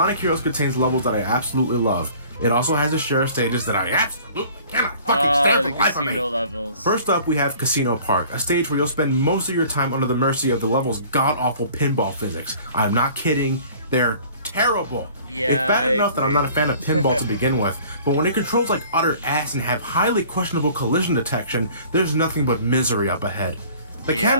Heroes contains levels that I absolutely love, it also has a share of stages that I absolutely cannot fucking stand for the life of me. Levels. First up, we have Casino Park, a stage where you'll spend most of your time under the mercy of the level's god-awful pinball physics. I'm not kidding, they're terrible. Yeah, it's bad enough that I'm not a fan of pinball to begin with, but when it controls like utter ass and have highly questionable collision detection, there's nothing but misery up ahead. The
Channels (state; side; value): inverted; both; correlation -0.50